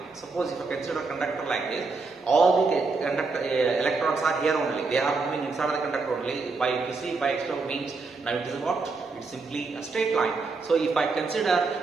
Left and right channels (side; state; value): left; quieter; 4.1 dB